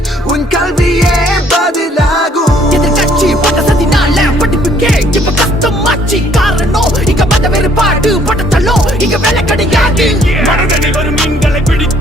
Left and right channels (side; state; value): both; normal; correlation 0.62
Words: Un kalviye badilagu எதிர்கட்சி பட்டசத்தினால படிப்புக்கே இப்ப கஷ்டமாச்சு காரணம் இங்க மத வேறுபாடு பட்டத்தள்ளோ இங்க வேலை கிடையாது மனதனை வரும் மீன்களை